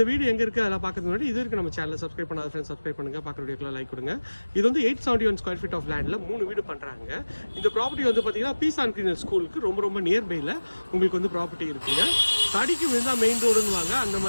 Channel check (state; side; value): inverted; both; correlation -1.00